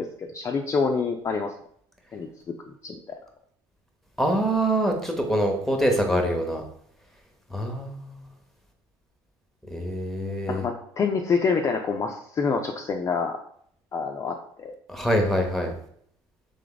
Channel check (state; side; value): normal; both; correlation 0.66